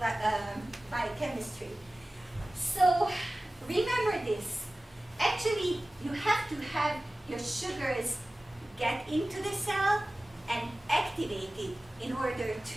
biochemistry. So remember this. Actually, you have to have your sugars get into the cell and activate it in order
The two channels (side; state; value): both; normal; correlation 0.97